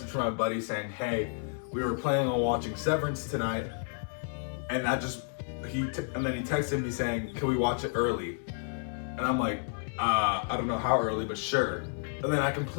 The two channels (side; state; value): right; silent; 57 dB below the other